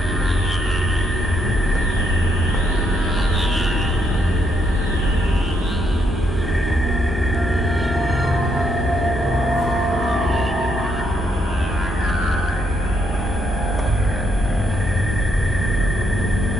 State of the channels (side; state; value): both; normal; correlation 0.76